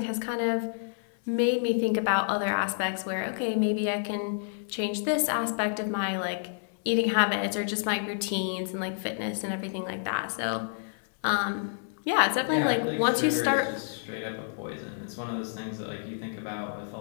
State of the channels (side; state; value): right; silent; 59 dB below the other